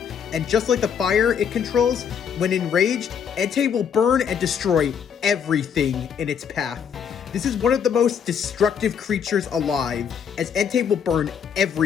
and just like the fire it controls, when enraged, Entei will burn and destroy everything in its path. This is one of the most destructive creatures alive, as Entei will burn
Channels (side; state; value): right; quieter; 7.5 dB